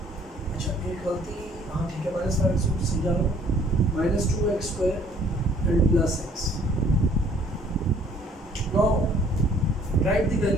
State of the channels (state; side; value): normal; both; correlation 0.58